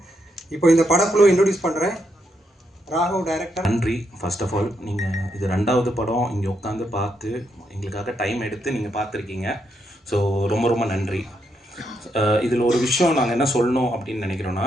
இப்போ இந்த படக்குழு இன்ட்ரடியூஸ் பண்ணுறேன். ராகவ் டைரக்டர். நன்றி. ஃபர்ஸ்ட் ஆஃப் ஆல் நீங்கள் இது 2வது படம் இங்கே உட்காந்து பார்த்து எங்களுக்காக டைம் எடுத்து நீங்கள் பார்த்துருக்கீங்க. ஸோ ரொம்ப ரொம்ப நன்றி. இதில் ஒரு விஷயம் நாங்கள் என்ன சொல்லணும் அப்படின்னு நினைக்கிறோன்னா,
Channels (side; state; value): both; normal; correlation 0.79